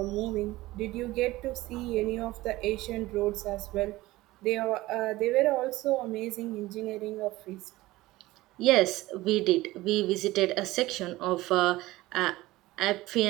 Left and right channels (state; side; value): quieter; left; 18.2 dB